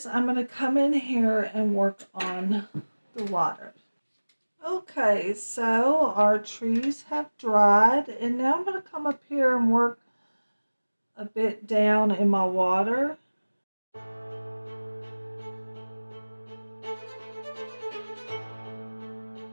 I'm going to come in here and work on the water. Okay, so our trees have dried, and now I'm going to come up here and work a bit down in my water.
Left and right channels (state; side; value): inverted; both; correlation -1.00